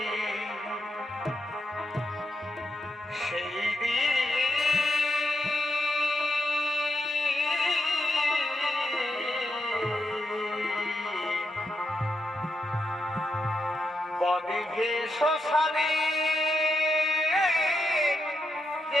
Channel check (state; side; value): normal; both; correlation 0.83